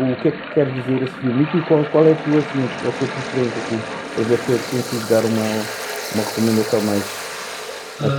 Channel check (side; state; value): both; identical; correlation 1.00